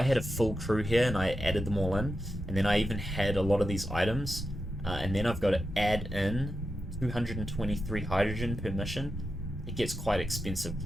had a full crew here and I added them all in, and then I even had a lot of these items, and then I've got to add in 223 hydrogen per mission, it gets quite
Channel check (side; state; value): both; normal; correlation 0.89